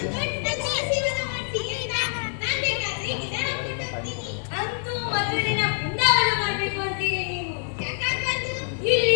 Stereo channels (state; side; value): silent; right; digital silence